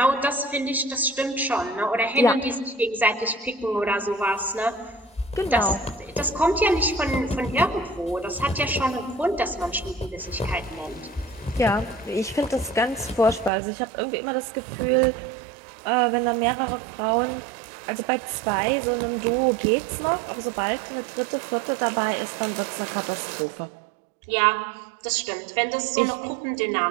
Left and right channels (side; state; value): left; drops out; at 13.5 s